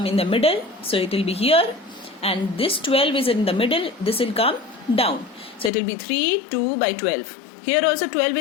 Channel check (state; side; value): drops out; right; at 5.7 s